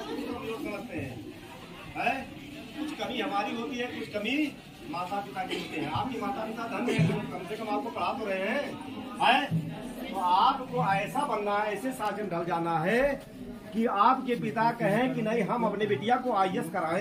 भी कमजोर समझते हैं, कुछ कमी हमारी होती है, कुछ कमी माता पिता की होती है। आपकी माता पिता धन है तो कम से कम आपको पढ़ा तो रहे हैं, तो आपको ऐसा बनना है, ऐसे शासन ढल जाना है कि आपके पिता कहें कि नहीं हम अपने बिटिया को IAS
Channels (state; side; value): identical; both; correlation 1.00